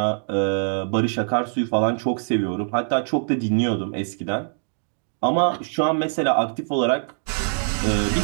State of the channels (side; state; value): left; silent; digital silence